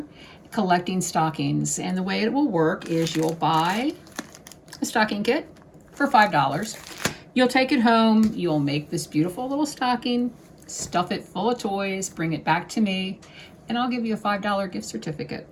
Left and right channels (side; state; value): both; identical; correlation 1.00